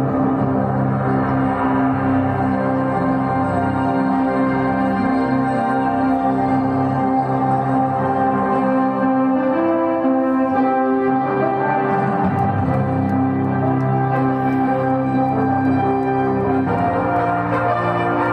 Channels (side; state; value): both; identical; correlation 1.00